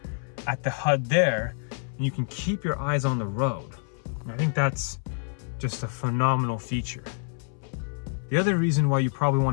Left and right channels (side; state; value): right; silent; 60 dB below the other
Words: at the HUD there, and you can keep your eyes on the road. And I think that's just a phenomenal feature. The other reason why you probably